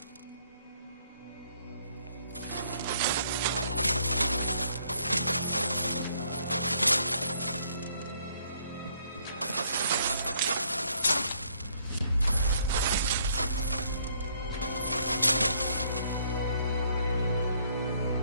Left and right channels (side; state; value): both; inverted; correlation -0.67